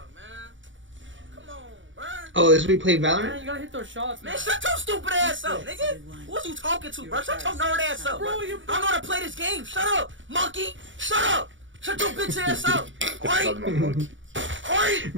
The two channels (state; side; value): late; left; 0.56 ms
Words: Oh, this we played Valorant. Man, you gotta hit those shots, man. Shut your stupid ass up, nigga. Who's you talking to, bro? Shut your nerd ass up, bro. I know how to play this game. Shut up, monkey. Shut up. Shut your bitch ass up. Alright.